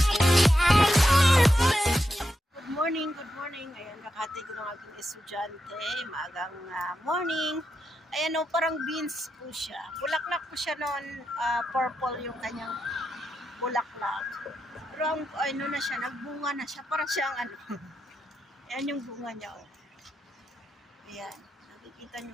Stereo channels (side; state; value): both; normal; correlation 0.86